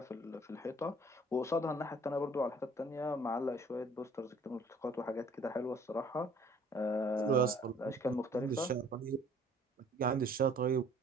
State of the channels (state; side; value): normal; both; correlation 0.55